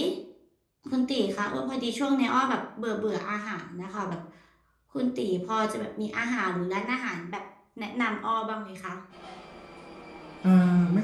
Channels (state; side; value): identical; both; correlation 1.00